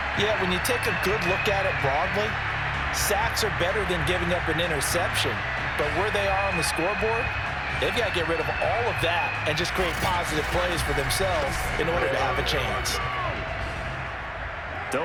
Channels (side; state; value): both; identical; correlation 1.00